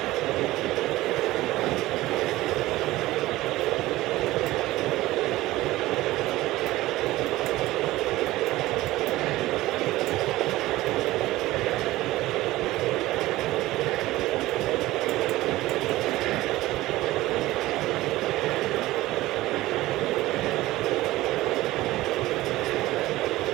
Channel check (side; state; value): left; quieter; 17.3 dB